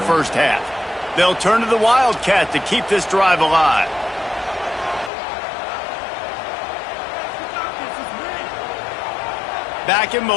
half. They'll turn to the Wildcat to keep this drive alive. Back in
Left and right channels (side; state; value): right; drops out; at 5.1 s